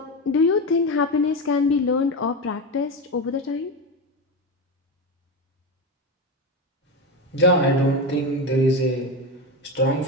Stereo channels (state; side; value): normal; both; correlation 0.17